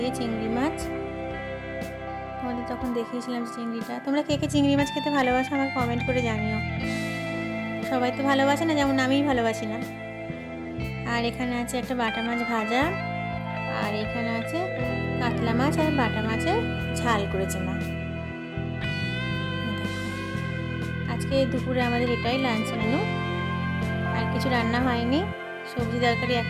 চিংড়ি মাছ। তোমাদের তখন দেখিয়েছিলাম চিংড়িটা। তোমরা কে কে চিংড়ি মাছ খেতে ভালোবাসো আমাকে কমেন্ট করে জানিও। সবাই তো ভালোবাসে না, যেমন আমিই ভালোবাসি না। আর এখানে আছে একটা বাটা মাছ ভাজা, আর এখানে আছে কাতলা মাছ আর বাটা মাছের ঝাল করেছে মা। দেখো আজকে দুপুরে আমাদের এটাই লাঞ্চ মেনু, আর কিছু রান্না হয়নি। সবজি তরকারি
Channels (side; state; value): both; identical; correlation 1.00